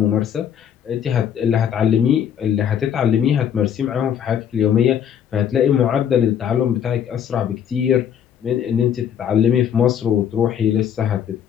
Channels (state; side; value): quieter; right; 8.8 dB